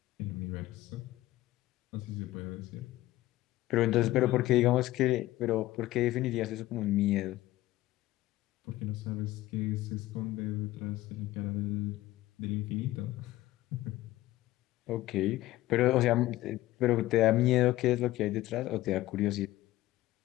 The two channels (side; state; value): right; quieter; 16.3 dB